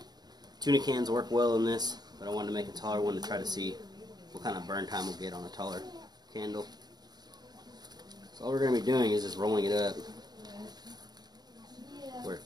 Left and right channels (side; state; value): left; late; 0.20 ms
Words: Tuna cans work well in this, but I wanted to make a taller one to try to see what kind of burn time we'll get on a taller candle. So all we're going to be doing is just rolling it up where it